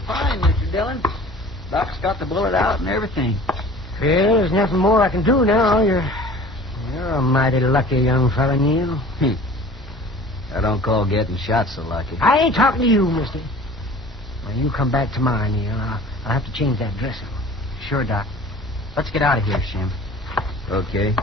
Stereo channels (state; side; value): normal; both; correlation 0.45